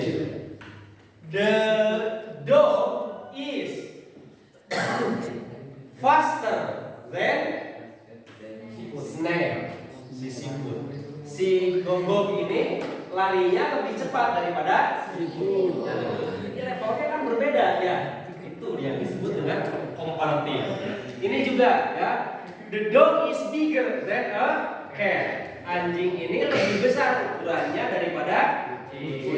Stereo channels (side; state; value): both; identical; correlation 1.00